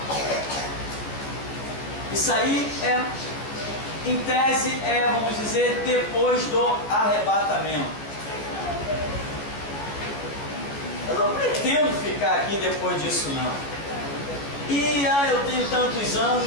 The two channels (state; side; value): late; right; 14 ms